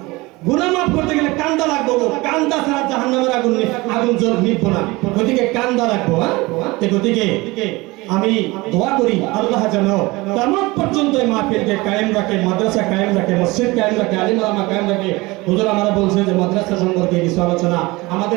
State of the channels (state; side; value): quieter; left; 22.4 dB